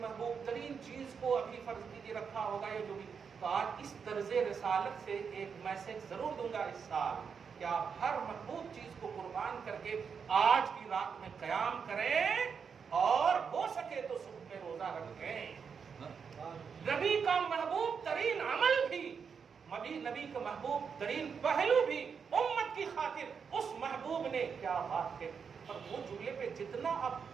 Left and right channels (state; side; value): quieter; left; 6.3 dB